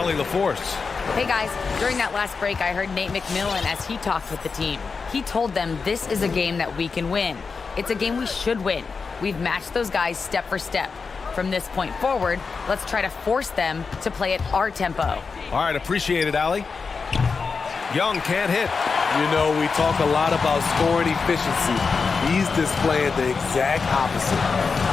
LaForce. Hey guys, during that last break, I heard Nate McMillan as he talked with the team. He told them this is a game that we can win. It's a game we should win. We've matched those guys step for step. From this point forward, let's try to force them to play at our tempo. All right, appreciate it, Allie. Young can't hit. You know, we talk a lot about scoring efficiency. He's displaying the exact opposite.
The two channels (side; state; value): right; quieter; 4.9 dB